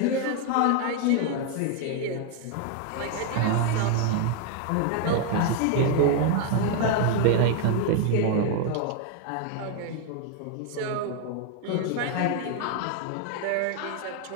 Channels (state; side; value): different; both; correlation 0.00